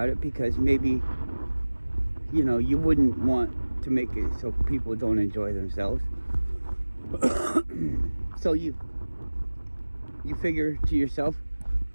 it, because maybe you wouldn't want to make it so people don't enjoy themselves. So you figure to yourself,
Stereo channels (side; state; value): both; inverted; correlation -1.00